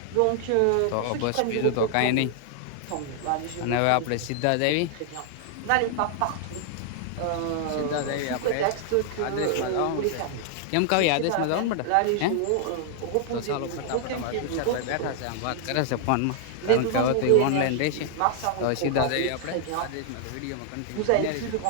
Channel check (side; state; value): both; different; correlation 0.00